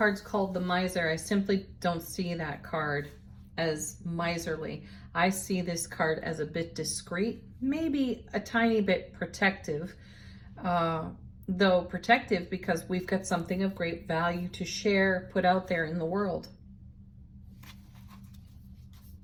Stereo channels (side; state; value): both; identical; correlation 1.00